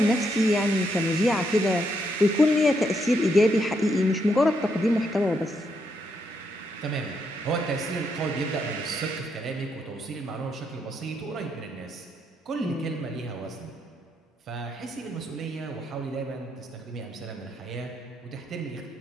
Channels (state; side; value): normal; both; correlation 0.77